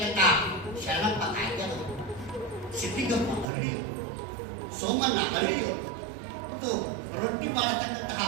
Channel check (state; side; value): drops out; left; at 3.5 s